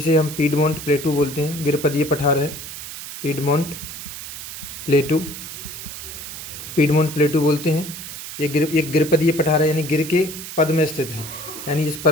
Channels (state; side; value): noise; right; hiss, 10 dB below the sound